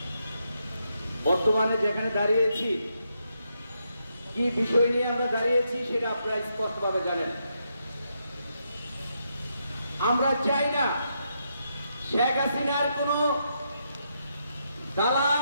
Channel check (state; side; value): inverted; both; correlation -0.80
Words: বর্তমানে যেখানে দাঁড়িয়েছি, কি বিষয় নিয়ে আমরা দাঁড়িয়েছি সেটা আপনারা স্পষ্টভাবে জানেন। আমরা চাই না শেখ হাসিনার কোনো